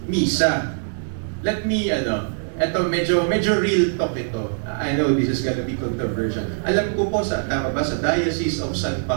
misa. Let me, eto medyo real talk ito. I know this is gonna be controversial. Alam ko po tama ba, sa Diocese of San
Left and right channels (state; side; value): silent; left; digital silence